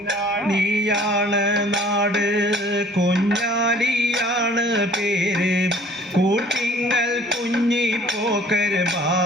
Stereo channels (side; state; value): both; normal; correlation 0.53